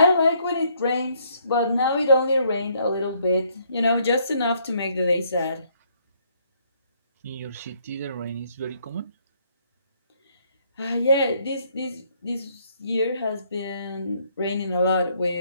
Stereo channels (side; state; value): both; inverted; correlation -0.68